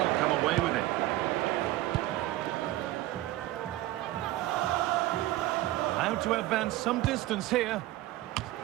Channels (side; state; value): left; quieter; 16.4 dB